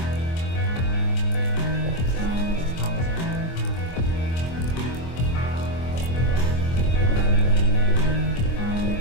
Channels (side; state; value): right; late; 24 ms